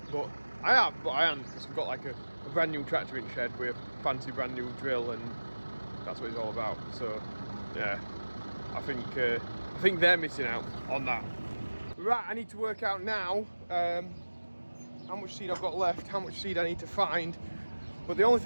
but I am because we've got like a brand new tractor in shed with a fancy brand new drill, and that's what it's all about. So yeah, I think they're missing out on that. Right, I need to work out now how much seed I've got left, how much seed I need to find. But the only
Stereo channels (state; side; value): inverted; both; correlation -1.00